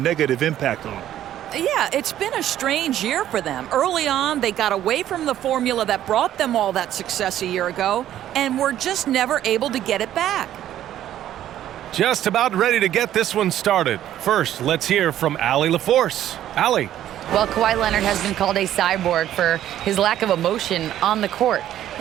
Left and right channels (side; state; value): left; quieter; 12.0 dB